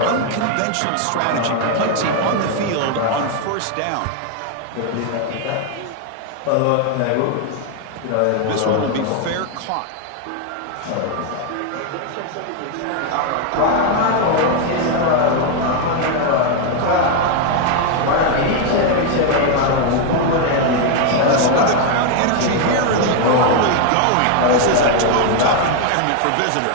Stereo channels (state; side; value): different; both; correlation 0.01